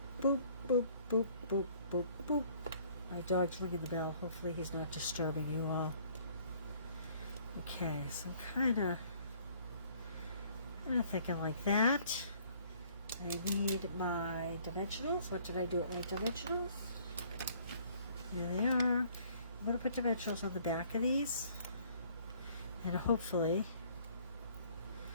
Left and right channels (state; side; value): inverted; both; correlation -0.59